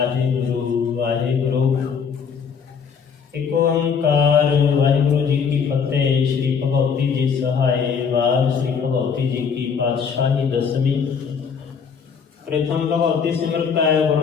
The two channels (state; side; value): quieter; right; 6.4 dB